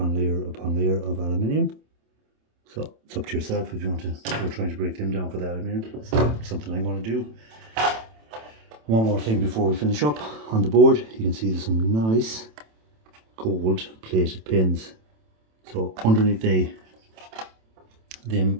layer upon layer of aluminium. So it's up to yourself if you want to go trying to break them down for the aluminium. It's something I'm going to do. One more thing before we finish up. On the board, you can see there's some nice gold plated pins. So underneath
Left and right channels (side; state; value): left; late; 27 ms